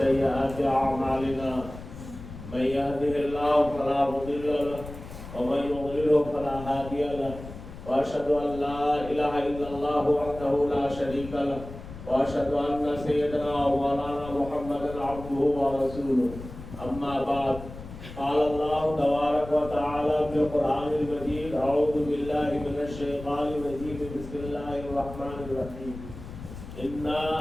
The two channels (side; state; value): left; noise; rumble, 13 dB below the sound